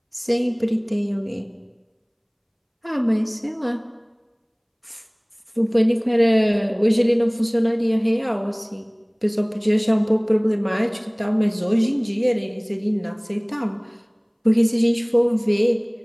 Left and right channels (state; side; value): identical; both; correlation 1.00